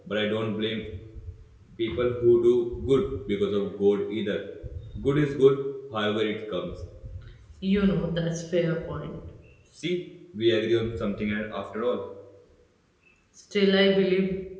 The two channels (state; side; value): identical; both; correlation 1.00